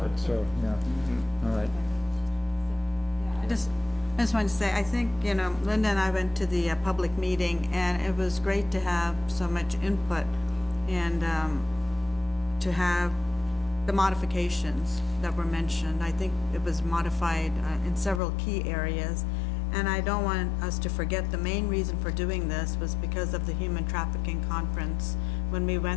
so, yeah. All right. I just wanted to say, I think, Linda and I went to the public meeting, and it was great to have so much input and to have the modifications that were mentioned. I think it was modified in several key areas, and I don't want us to forget the main reason for doing this was because of the human trafficking conference. When we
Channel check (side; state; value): right; drops out; at 18.2 s